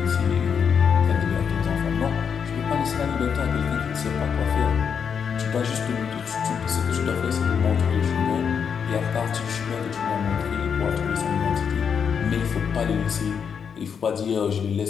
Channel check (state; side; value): quieter; right; 6.9 dB